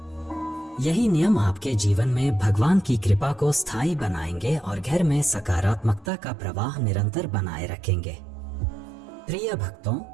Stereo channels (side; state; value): left; drops out; at 6.1 s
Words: यही नियम आपके जीवन में भगवान की कृपा को स्थायी बनाएंगे और घर में सकारात्मकता का प्रवाह निरंतर बनाए रखेंगे। प्रिय भक्तों,